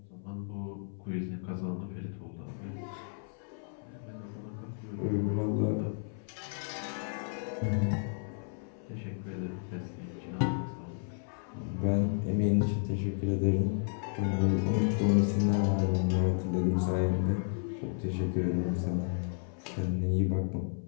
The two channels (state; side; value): silent; right; 56 dB below the other